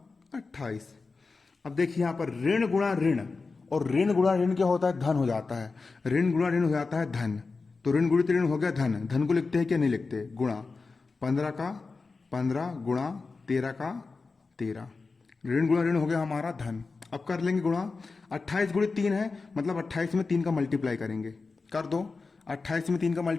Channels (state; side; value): quieter; right; 4.2 dB